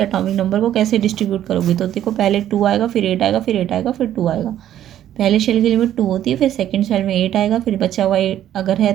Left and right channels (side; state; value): left; quieter; 11.6 dB